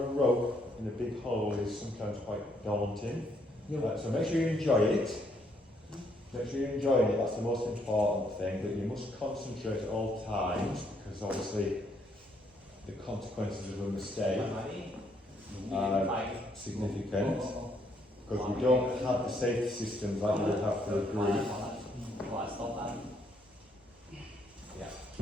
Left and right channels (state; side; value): normal; both; correlation 0.71